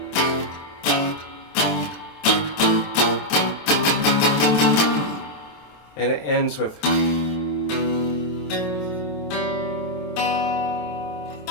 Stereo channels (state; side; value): late; right; 27 ms